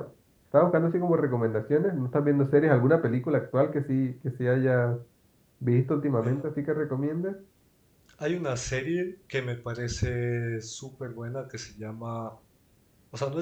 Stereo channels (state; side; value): identical; both; correlation 1.00